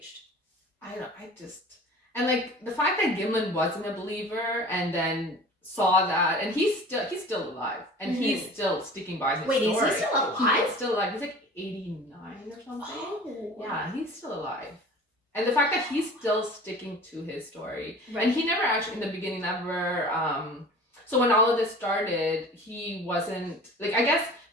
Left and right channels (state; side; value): normal; both; correlation 0.42